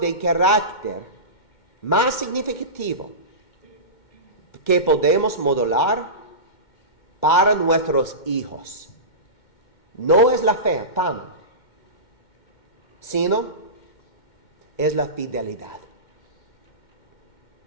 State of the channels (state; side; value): late; right; 2.1 ms